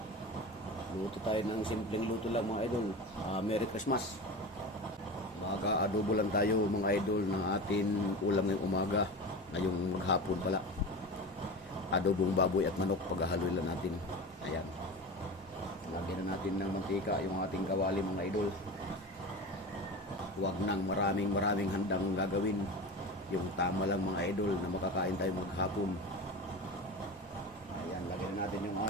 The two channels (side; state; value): both; normal; correlation 0.29